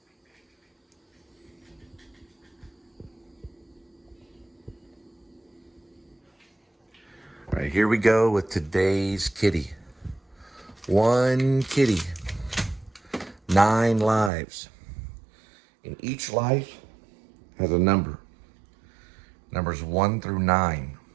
All right, here we go with today's kitty. 1 kitty, 9 lives. And each life has a number. Numbers 1 through 9.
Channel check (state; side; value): drops out; left; at 14.3 s